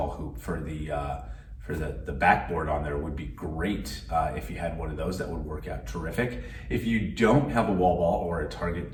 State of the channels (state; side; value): identical; both; correlation 1.00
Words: hoop for the backboard on there would be great. If you had one of those, that would work out terrific. If you don't have a wall ball or a target